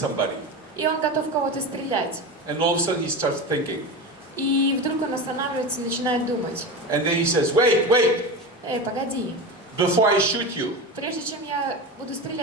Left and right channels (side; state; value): both; normal; correlation 0.24